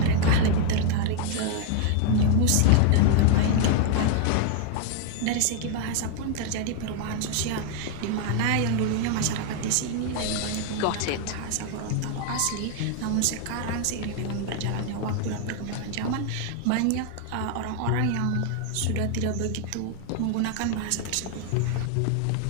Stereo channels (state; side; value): different; both; correlation 0.00